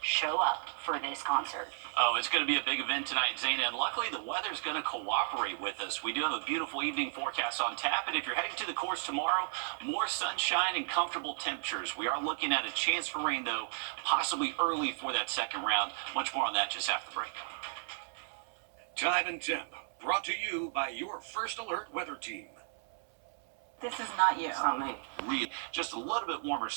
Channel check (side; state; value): left; silent; 55 dB below the other